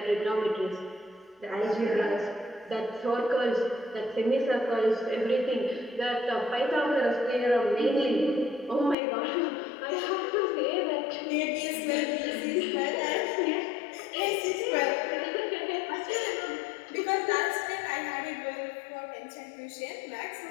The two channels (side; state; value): right; drops out; at 9.0 s